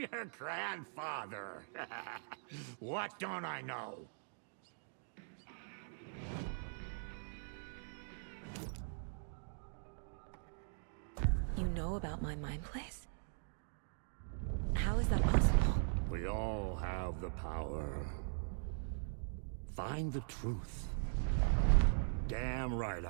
your grandfather. What don't I know? You know about my mind place? How is that possible? We all have the power. Find the truth. Damn right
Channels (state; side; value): silent; left; digital silence